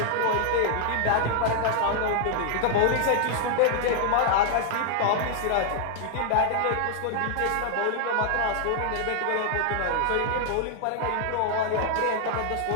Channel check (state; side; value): different; both; correlation 0.00